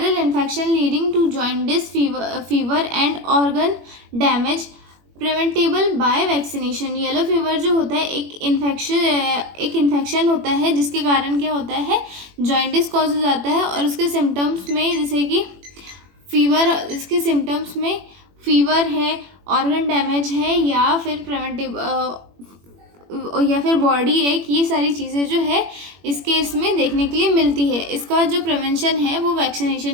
infection leading to jaundice, fever and organ damage, preventable by vaccination. Yellow fever जो होता है एक इन्फेक्शन होता है जिसके कारण क्या होता है, जॉइंटिस कॉज हो जाता है, और उसके सिम्टम्स में जैसे कि इसके सिम्टम्स में फीवर है, ऑर्गन डैमेज है, या फिर बॉडी एक, ये सारी चीज़ें जो है इस केस में देखने के लिए मिलती है। इसका जो प्रिवेंशन है वो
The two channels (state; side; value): late; left; 21 ms